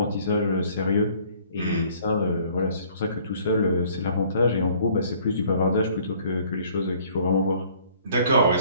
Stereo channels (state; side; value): inverted; both; correlation -0.57